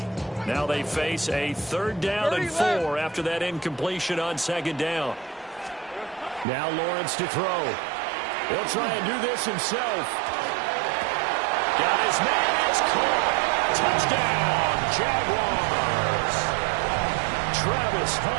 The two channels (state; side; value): drops out; left; at 6.5 s